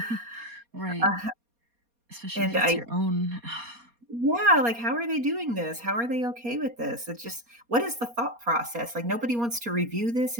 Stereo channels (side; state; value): left; late; 4.2 ms